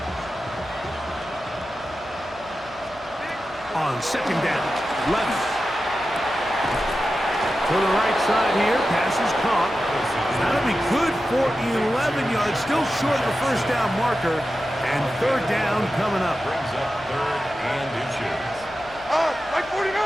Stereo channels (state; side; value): noise; left; hum, 23 dB below the sound